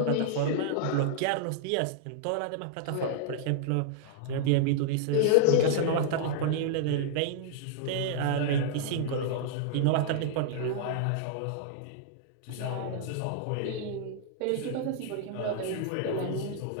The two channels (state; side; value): different; both; correlation -0.01